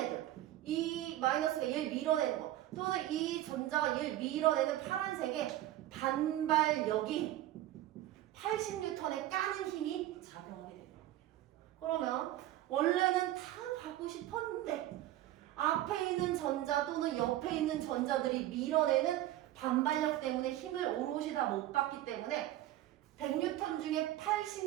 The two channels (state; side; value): quieter; left; 14.2 dB